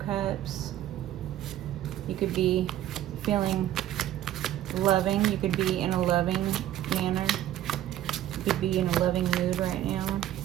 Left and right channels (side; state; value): left; quieter; 12.7 dB